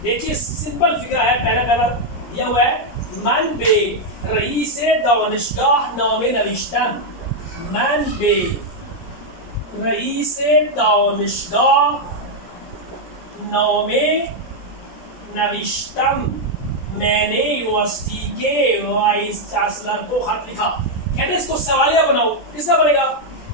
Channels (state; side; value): late; right; 17 ms